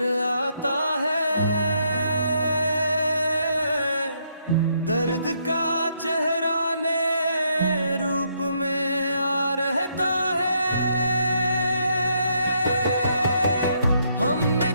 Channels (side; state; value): both; inverted; correlation -0.74